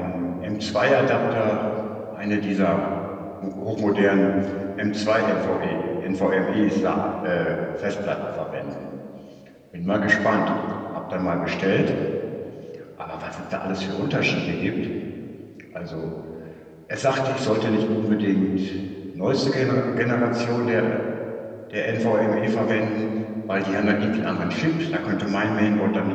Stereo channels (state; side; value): identical; both; correlation 1.00